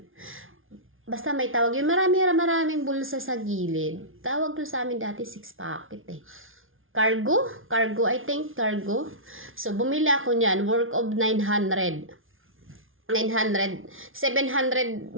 Basta may tawag yun. Maraming bulsa sa gilid. Tawag doon sa amin dati 6 packet eh. Cargo, I think, cargo. So, bumili ako niyan, worth of 900, 700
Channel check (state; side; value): late; left; 0.59 ms